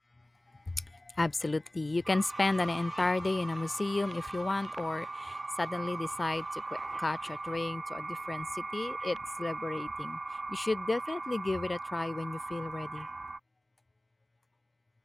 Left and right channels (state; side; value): normal; both; correlation 0.98